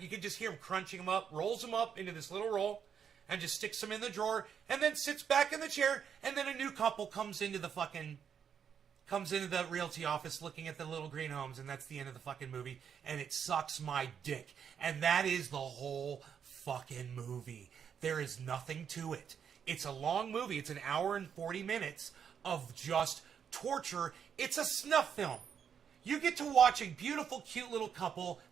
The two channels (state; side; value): quieter; left; 7.7 dB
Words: You can just hear him crunching him up, rolls him up into this little roll, and just sticks him in the drawer, and then sits back in the chair, and then a new couple comes into the realty office looking at the little green homes, and that's the end of the fucking movie, and it sucks my dick. And that is the whole fucking movie. There is nothing to it. It's a long movie. It's an hour and 40 minutes of just torture. It's a snuff film. You get to watch a beautiful, cute little couple